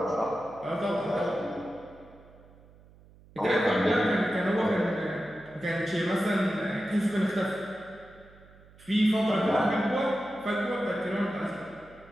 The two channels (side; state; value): right; noise; hum, 25 dB below the sound